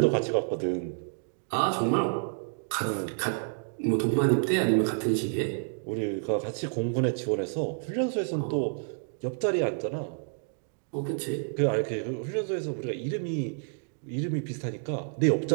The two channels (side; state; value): left; silent; digital silence